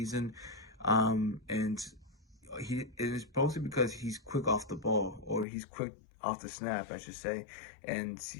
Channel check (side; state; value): right; drops out; at 5.5 s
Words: And it is mostly because he's quick off the ball, or he's quick off the snap, I should say. And